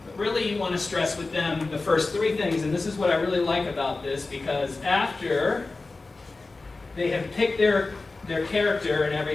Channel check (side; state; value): right; quieter; 3.5 dB